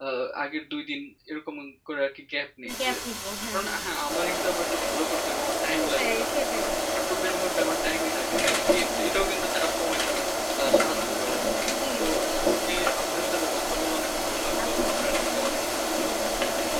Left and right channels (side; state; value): both; identical; correlation 1.00